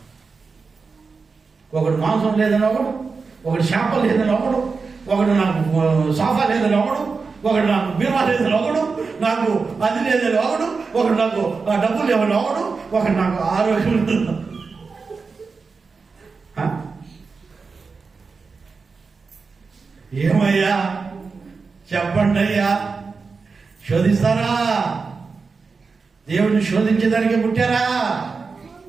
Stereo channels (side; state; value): left; quieter; 4.7 dB